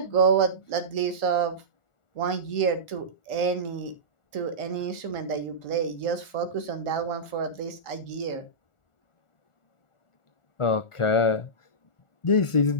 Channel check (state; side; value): late; right; 1.4 ms